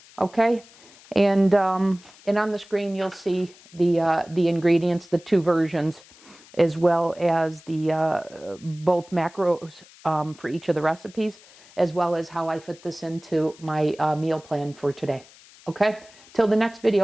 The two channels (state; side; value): noise; left; hiss, 24 dB below the sound